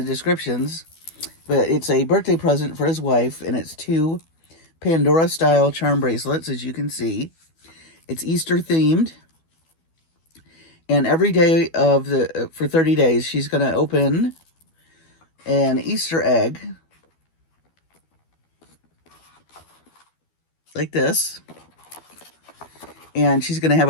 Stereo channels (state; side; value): late; right; 12 ms